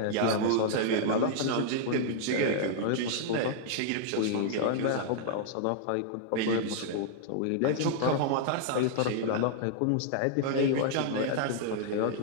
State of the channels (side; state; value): both; different; correlation -0.01